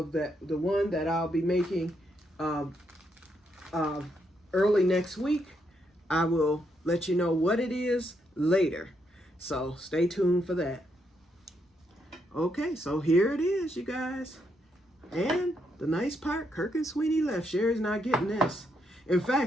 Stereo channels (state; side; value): normal; both; correlation 0.78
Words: the one that I'll be making early next week. I will let you know what it is later. So stay tuned for that. Okay, so here it is, you guys. And the nice part, Kirk and Sweeney left. Sherry's not getting this. In